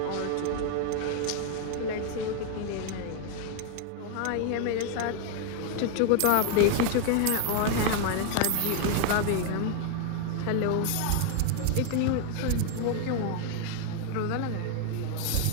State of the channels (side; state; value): both; different; correlation 0.00